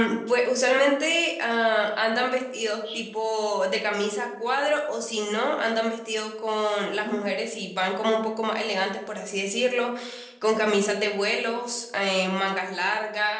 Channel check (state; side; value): identical; both; correlation 1.00